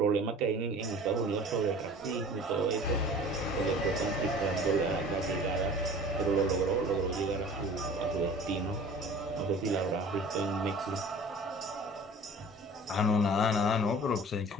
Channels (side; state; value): both; normal; correlation 0.44